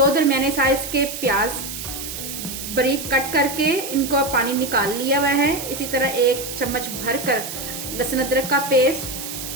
दरमियाने साइज के प्याज, बारीक कट करके इनको पानी निकाल लिया हुआ है। इसी तरह 1 चम्मच भरकर लहसुन अदरक का पेस्ट,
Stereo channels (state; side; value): noise; right; hiss, 8 dB below the sound